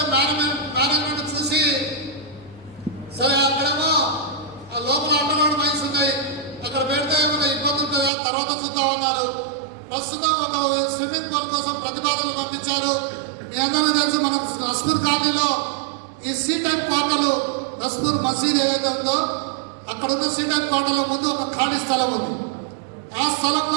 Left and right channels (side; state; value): left; drops out; at 8.1 s